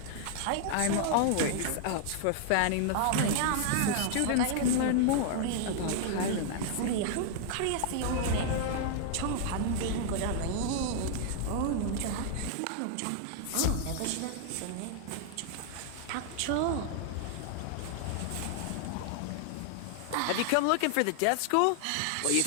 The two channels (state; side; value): different; both; correlation -0.01